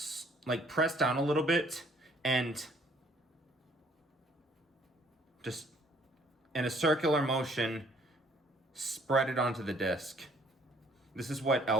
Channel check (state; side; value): normal; both; correlation 0.61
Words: like press down a little bit and just in a circular motion, spread it onto the disc. This is what